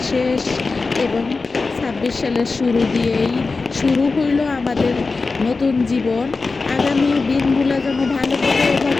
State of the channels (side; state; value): right; quieter; 4.0 dB